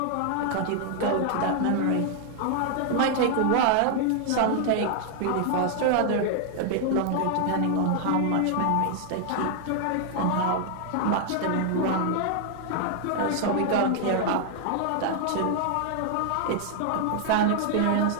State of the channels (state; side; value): different; both; correlation 0.00